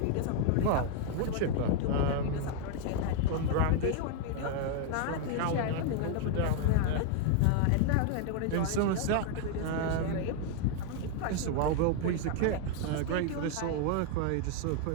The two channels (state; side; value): different; both; correlation 0.00